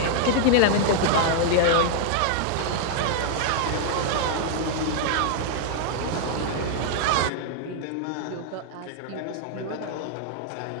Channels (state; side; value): different; both; correlation 0.00